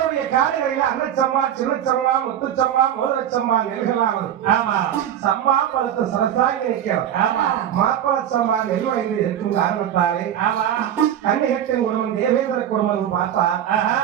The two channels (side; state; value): left; quieter; 10.3 dB